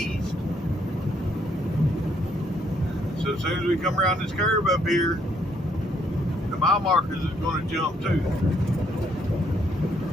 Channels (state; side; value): normal; both; correlation 0.70